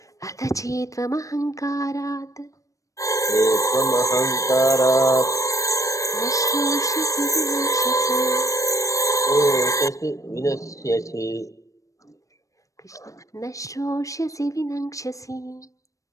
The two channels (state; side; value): late; right; 0.16 ms